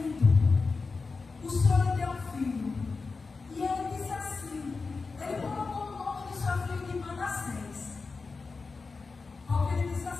O Senhor lhe deu um filho. E ele disse assim, ele colocou o nome do seu filho de Manassés. Porque ele disse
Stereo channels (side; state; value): right; quieter; 4.3 dB